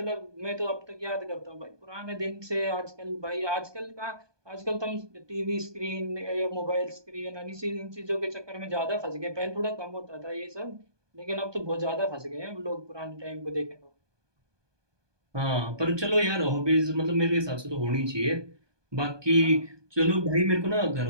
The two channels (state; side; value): late; left; 1.2 ms